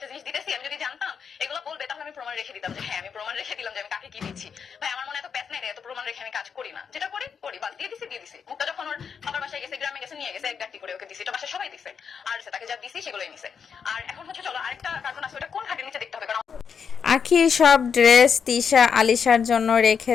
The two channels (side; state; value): right; quieter; 6.6 dB